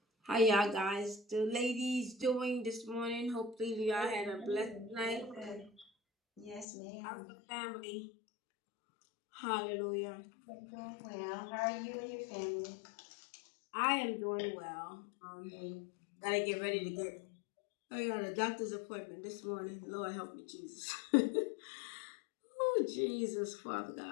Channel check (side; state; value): right; drops out; at 6.7 s